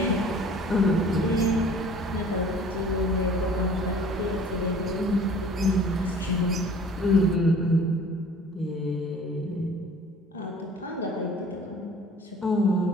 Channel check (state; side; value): normal; both; correlation 0.49